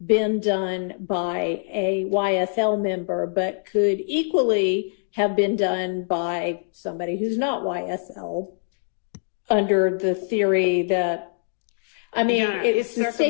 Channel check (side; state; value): right; silent; digital silence